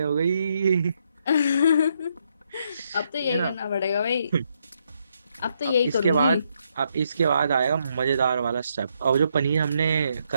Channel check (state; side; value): inverted; both; correlation -0.76